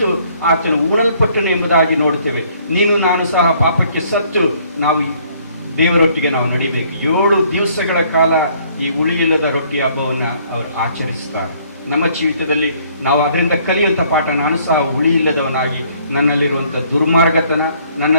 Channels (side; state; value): both; inverted; correlation -0.62